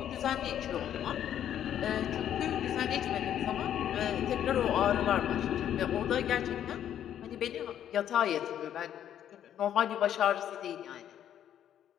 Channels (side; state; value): right; quieter; 10.3 dB